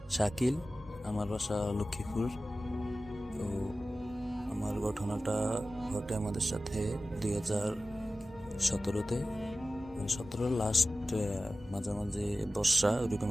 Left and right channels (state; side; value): normal; both; correlation 0.95